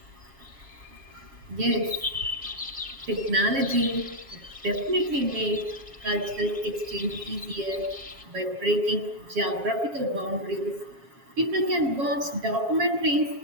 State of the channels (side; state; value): left; late; 7.3 ms